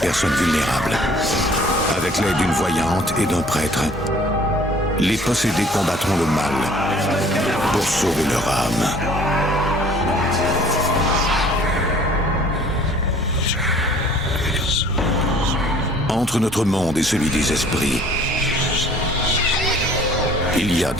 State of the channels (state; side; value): normal; both; correlation 0.53